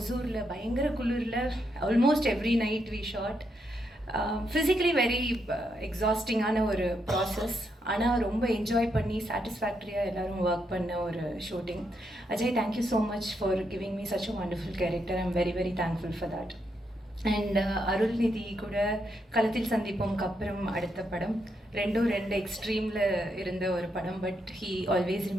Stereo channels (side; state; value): both; normal; correlation 0.80